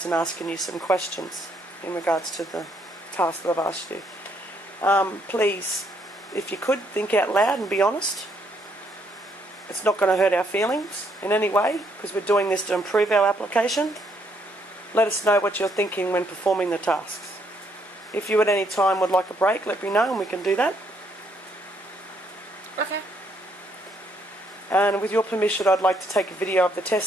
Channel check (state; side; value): normal; both; correlation 0.71